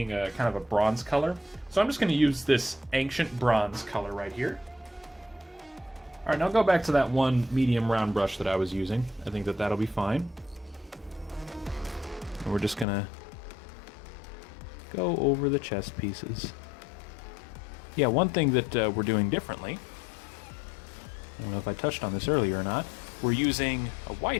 a kind of a bronze color. So I'm just going to use this ancient bronze color right here. All right, now go back to that one medium round brush that I was using. I think that that'll be fine. And we're just going to go over the chest pieces. Yeah, one thing that we're doing differently, I don't know if I touched on this earlier or not, we're using a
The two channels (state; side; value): drops out; right; at 12.9 s